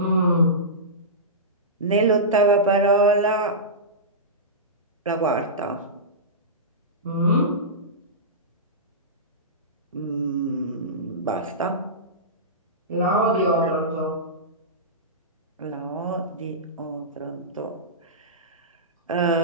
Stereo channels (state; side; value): normal; both; correlation -0.18